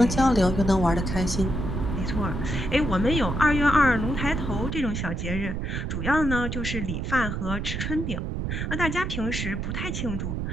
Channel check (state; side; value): noise; right; rumble, 3 dB below the sound